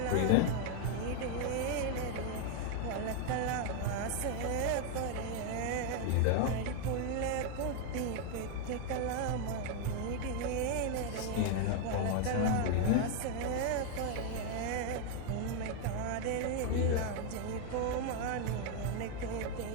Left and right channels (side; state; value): both; different; correlation 0.00